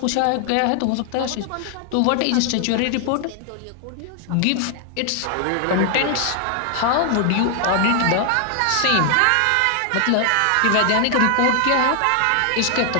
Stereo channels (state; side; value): different; both; correlation 0.00